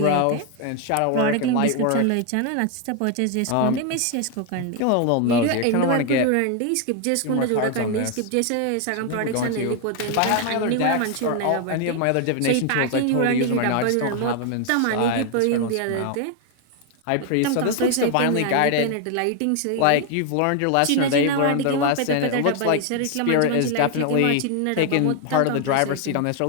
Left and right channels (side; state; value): both; different; correlation 0.00